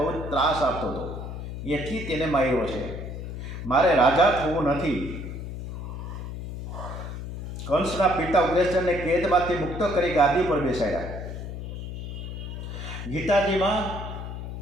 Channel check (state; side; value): noise; left; hum, 7 dB below the sound